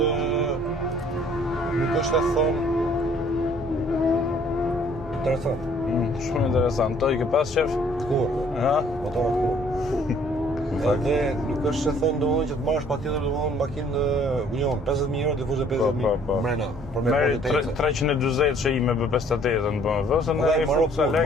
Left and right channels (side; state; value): both; normal; correlation 0.59